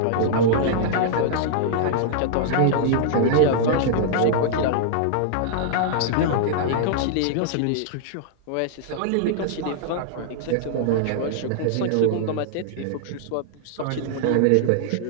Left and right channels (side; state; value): both; different; correlation -0.01